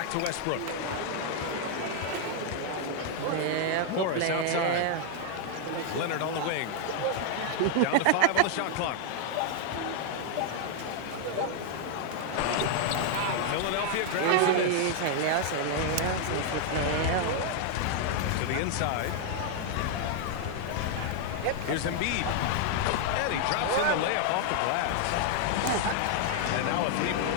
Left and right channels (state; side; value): different; both; correlation 0.00